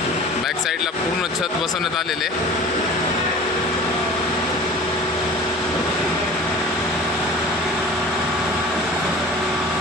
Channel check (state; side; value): normal; both; correlation 0.41